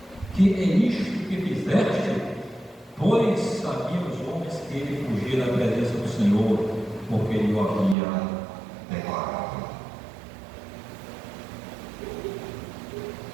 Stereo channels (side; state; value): left; drops out; at 8.0 s